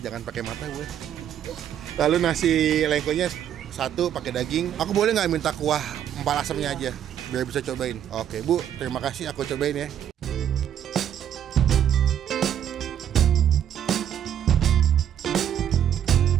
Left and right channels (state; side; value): quieter; left; 9.9 dB